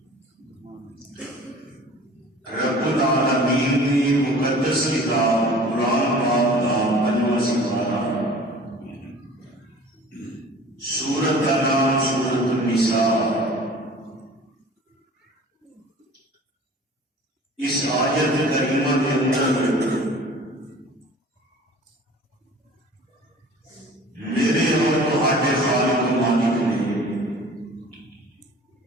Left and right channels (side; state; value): both; normal; correlation 0.45